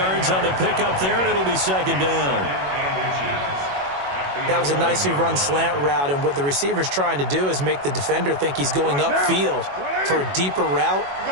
on the pickup there, and it'll be 2nd down. That was a nicely run slant route, and what the receiver's trying to do is make the defender think he's going upfield for a deeper route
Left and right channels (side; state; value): left; late; 21 ms